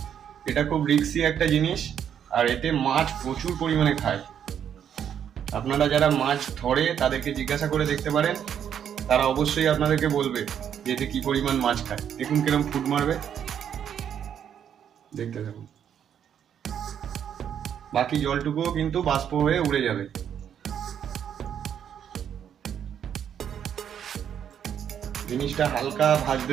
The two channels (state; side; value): quieter; left; 8.9 dB